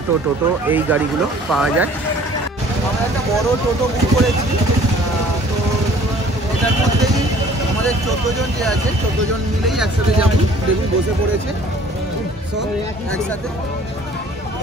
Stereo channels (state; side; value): normal; both; correlation 0.53